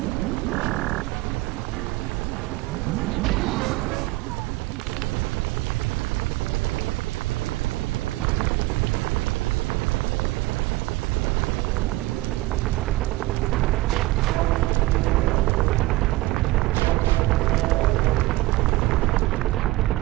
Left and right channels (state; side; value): quieter; left; 18.9 dB